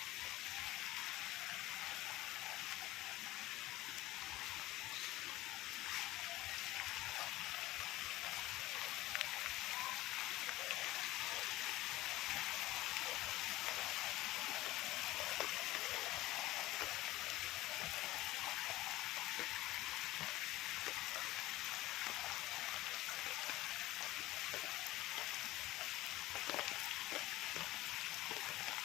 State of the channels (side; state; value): right; quieter; 17.5 dB